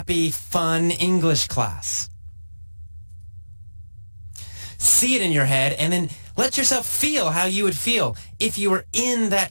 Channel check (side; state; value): both; inverted; correlation -1.00